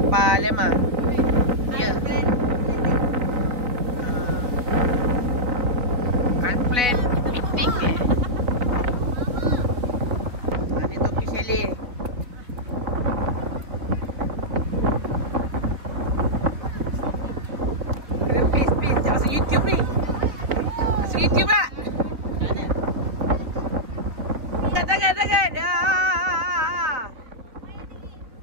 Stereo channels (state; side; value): late; left; 3.6 ms